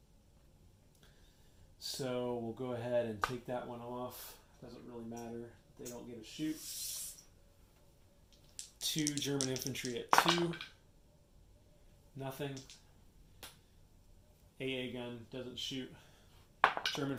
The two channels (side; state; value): both; identical; correlation 1.00